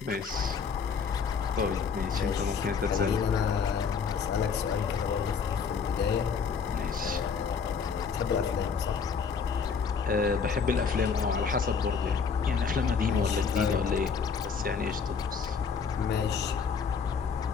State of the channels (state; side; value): quieter; right; 5.8 dB